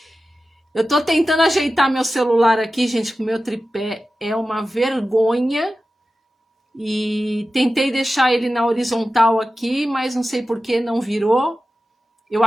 Eu tô tentando ajeitar meu celular aqui, gente, com o meu tripé. É uma vergonha. E tentei deixar ele na horizontal aqui, mas não sei por que não virou. Eu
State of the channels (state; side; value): normal; both; correlation 0.94